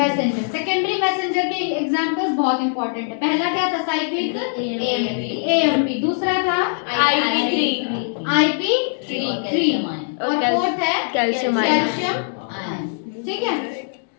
Secondary messenger के एग्जांपल्स बहुत इंपॉर्टेंट है। पहला क्या था? Cyclic AMP. दूसरा था IP3 और फोर्थ है कैल्शियम आयन। ठीक है।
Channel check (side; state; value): right; silent; digital silence